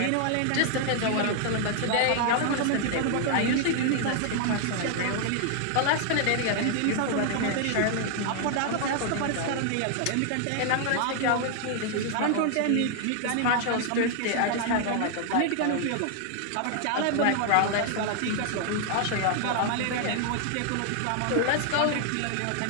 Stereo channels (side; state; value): both; different; correlation 0.00